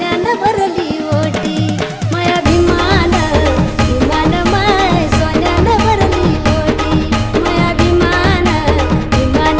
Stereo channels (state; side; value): identical; both; correlation 1.00